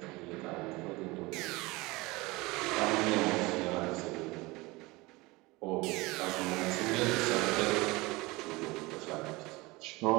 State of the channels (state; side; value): quieter; left; 22.6 dB